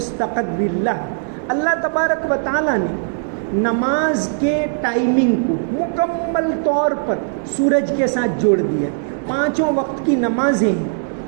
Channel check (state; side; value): silent; left; digital silence